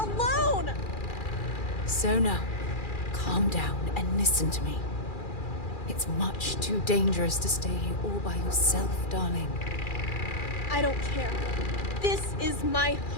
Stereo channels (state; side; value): late; right; 2.4 ms